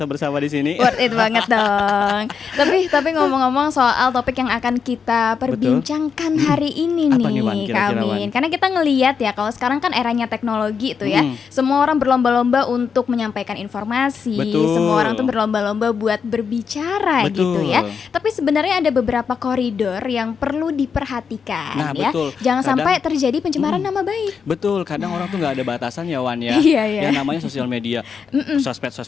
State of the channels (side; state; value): right; quieter; 6.2 dB